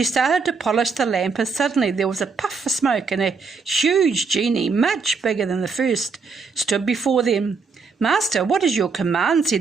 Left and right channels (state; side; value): quieter; left; 4.8 dB